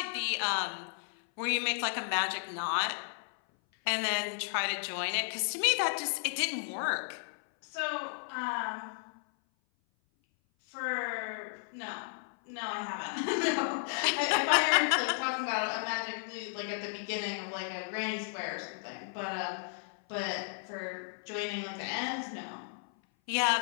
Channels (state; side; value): silent; right; 55 dB below the other